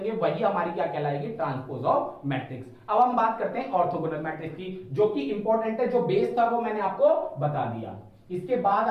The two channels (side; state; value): both; identical; correlation 1.00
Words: वही हमारी क्या कहलाएगी, ट्रांसपोज ऑफ मैट्रिक्स। अब हम बात करते हैं ऑर्थोगोनल मैट्रिक्स की, जो कि इंपॉर्टेंट है, जो बेस था वो मैंने आपको बता दिया। इसके बाद